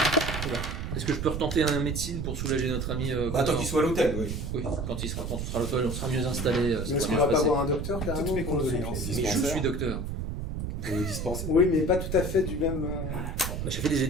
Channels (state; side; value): noise; right; rumble, 4 dB below the sound